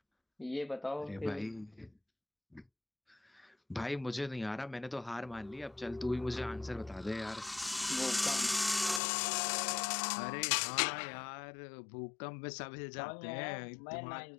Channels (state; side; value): drops out; right; at 9.0 s